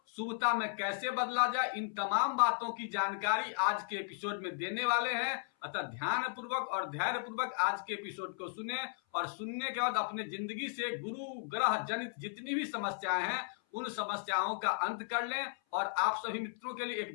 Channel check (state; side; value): silent; right; 54 dB below the other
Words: शुभता में कैसे बदला जाए, इन तमाम बातों की जानकारी आज के एपिसोड में देने वाले हैं। अतः ध्यान पूर्वक और धैर्य पूर्वक आज के एपिसोड को सुने और सुनने के बाद अपने जिंदगी से गुरु ग्रह जनित जितनी भी समस्याएं हैं उन समस्याओं का अंत कर लें। और आप सभी मित्रों के लिए एक